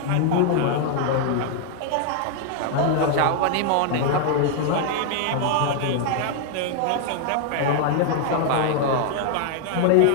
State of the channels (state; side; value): different; both; correlation 0.00